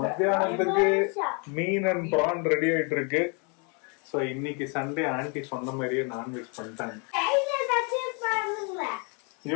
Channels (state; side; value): quieter; right; 35.5 dB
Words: மீன் அண்ட் பிரான் ரெடி ஆயிட்டு இருக்கு. சோ இன்னைக்கு சண்டே ஆண்டி சொன்ன மாதிரியே நான்வெஜ் பண்ணிட்டாங்க.